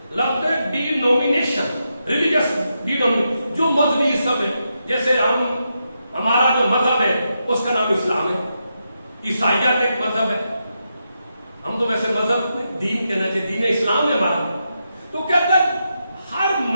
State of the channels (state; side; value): inverted; both; correlation -0.85